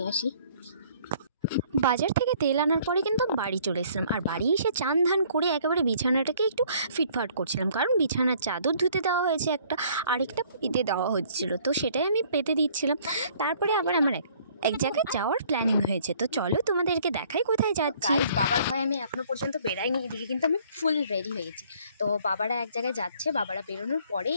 আসি। বাজার থেকে তেল আনার পরে কিন্তু বাড়ি চলে এসলাম, আর বাড়ি এসে চান ধান করে একেবারে বিছানাটাকে একটু ফিটফাট করছিলাম, কারণ বিছানার চাদর ধুতে দেওয়া হয়েছে একটা, আরেকটা পেতে দেওয়া হচ্ছিলো, তো সেটাই আমি পেতে দিচ্ছিলাম। তারপরে আবার আমার এক জায়গায় যাওয়ার প্ল্যানিং হয়েছে, তো চলো তোমাদেরকে দেখাই কোথায় যাচ্ছি। বাবার ভয়ে আমি এখনো পর্যন্ত বেরাইনি, এদিকে কিন্তু আমি ফুল রেডি হয়ে গেছি। তো বাবারা এক জায়গায় যাচ্ছে, বাবারা বেরোনোর পরেই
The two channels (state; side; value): inverted; both; correlation -0.59